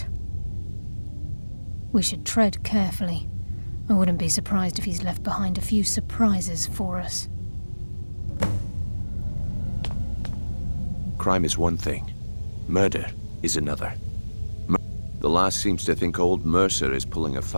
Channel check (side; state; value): both; inverted; correlation -1.00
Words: We should tread carefully. I wouldn't be surprised if he's left behind a few surprises for us. Crime is one thing. Murder is another. The last seems to think old Mercer is pulling a